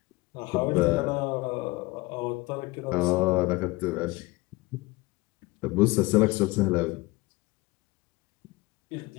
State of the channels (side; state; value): right; quieter; 22.2 dB